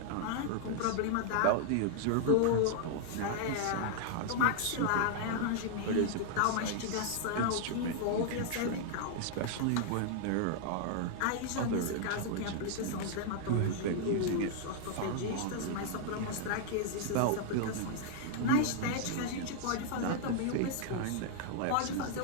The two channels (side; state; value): both; different; correlation 0.00